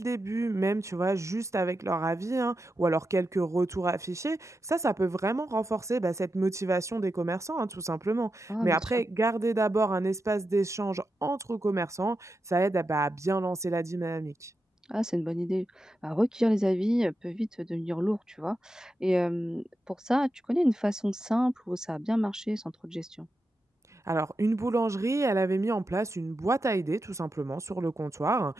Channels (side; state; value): both; normal; correlation 0.88